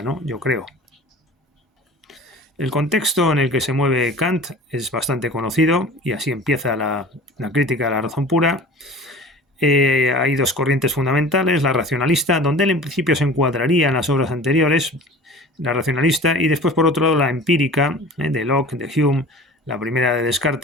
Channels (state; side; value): normal; both; correlation 0.41